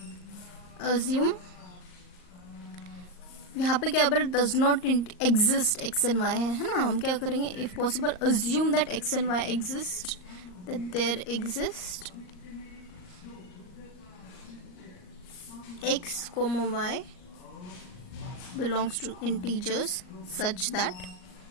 अज्यूम, यहाँ पे क्या पर does not exist X and Y है ना। हम क्या करेंगे, if possible assume that X and Y exist, that there exist x comma y belongs to integers such that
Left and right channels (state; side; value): late; right; 38 ms